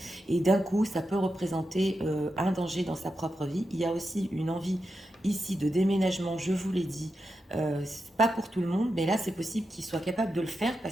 et d'un coup ça peut représenter un danger dans sa propre vie. Il y a aussi une envie ici de déménagement, je vous l'ai dit, c'est pas pour tout le monde, mais là c'est possible qu'il soit capable de le faire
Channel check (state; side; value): normal; both; correlation 0.88